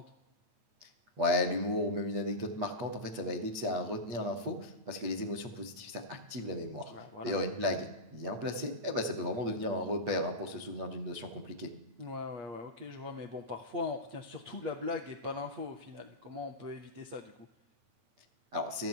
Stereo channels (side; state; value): left; late; 8.4 ms